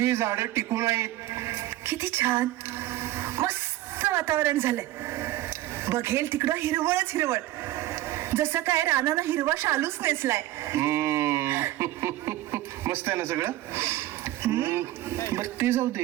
झाडं टिकून आहेत. किती छान मस्त वातावरण झालंय. बघेल तिकडं हिरवळच हिरवळ, जसं काय रानानं हिरवा शालूच नेसलाय. मस्त आहे ना सगळं. बर ते जाऊ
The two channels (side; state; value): left; quieter; 15.6 dB